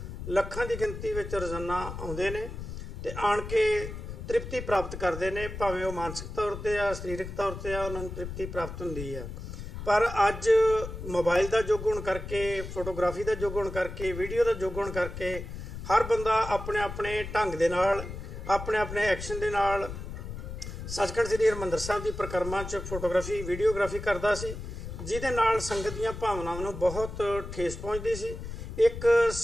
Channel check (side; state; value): left; noise; rumble, 8 dB below the sound